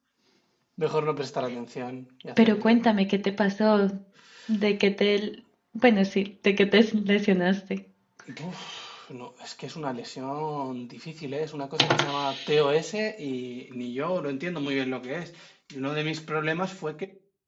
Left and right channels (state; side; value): identical; both; correlation 1.00